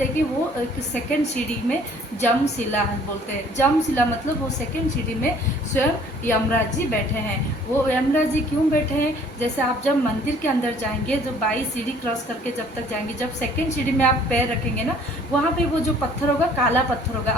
हैं कि वो एक सेकंड सीढ़ी में जमशिला बोलते हैं। जमशिला मतलब वो सेकंड सीढ़ी में स्वयं यमराज जी बैठे हैं। वो यमराज जी क्यों बैठे हैं, जैसे आप जब मंदिर के अंदर जाएंगे, जो 22 सीढ़ी क्रॉस करके जब तक जाएंगे, जब सेकंड सीढ़ी में आप पैर रखेंगे ना, वहाँ पे वो जो पत्थर होगा काला पत्थर होगा।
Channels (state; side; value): normal; both; correlation 0.56